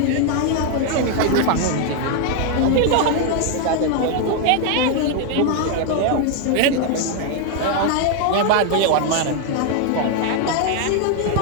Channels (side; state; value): both; different; correlation 0.00